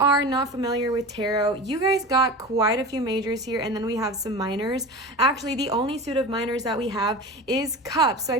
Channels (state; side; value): normal; both; correlation 0.31